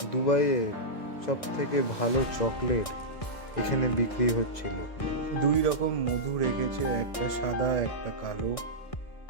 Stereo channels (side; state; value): right; late; 1.6 ms